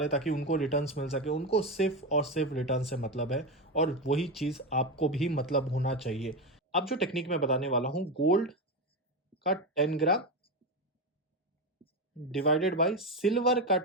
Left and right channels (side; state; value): both; normal; correlation 0.14